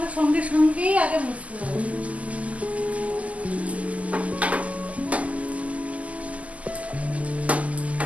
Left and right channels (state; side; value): late; left; 0.069 ms